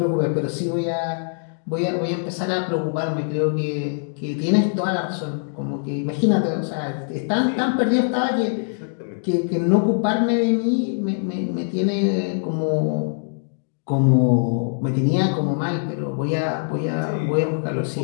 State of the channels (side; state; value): right; silent; digital silence